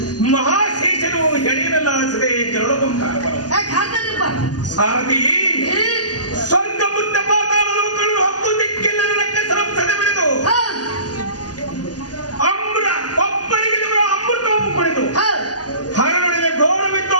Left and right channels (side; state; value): right; late; 0.69 ms